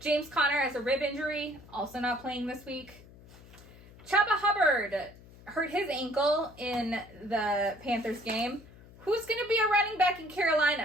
Conner has a rib injury, also not playing this week. Chuba Hubbard hurt his ankle in the Panthers game. Who's going to be a running back in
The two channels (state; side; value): noise; left; hum, 21 dB below the sound